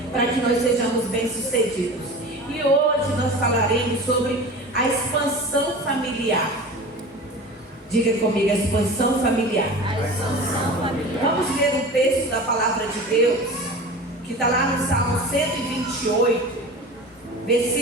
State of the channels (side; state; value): both; normal; correlation 0.35